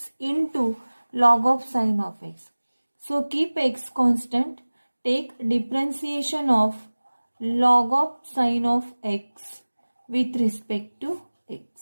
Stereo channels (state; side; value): inverted; both; correlation -1.00